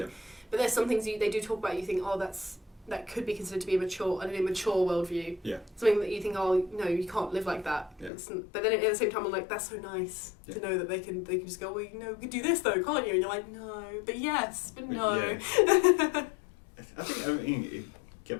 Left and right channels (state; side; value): drops out; right; at 8.1 s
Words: But there's some things they do talk about, you think, oh, that could be considered to be an immature worldview. Yeah. Something that you think, oh, no, you can't live like that. Yeah. But then at the same time, I'm like, that's so nice to know that they can just go, well, you can do this though, can't you? And you're like, no, but yes, but no. Yeah. I think,